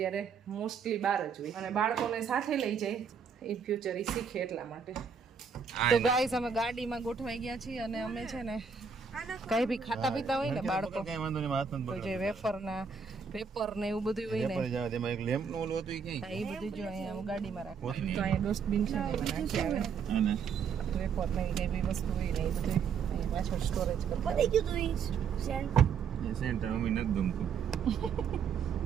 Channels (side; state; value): left; quieter; 6.3 dB